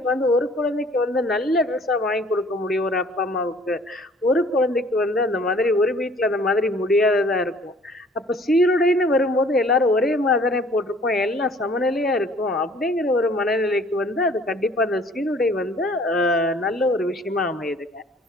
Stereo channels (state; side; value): normal; both; correlation 0.54